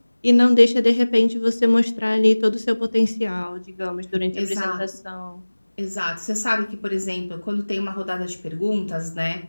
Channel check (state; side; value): inverted; both; correlation -1.00